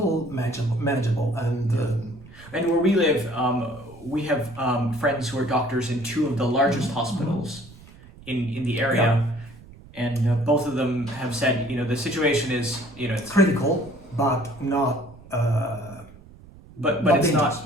manageable. And where we live, we have friends who are doctors in two of the largest hospitals in the area, and both of them have said, the situation is, it's critical, but not. But it's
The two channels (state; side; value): noise; right; rumble, 21 dB below the sound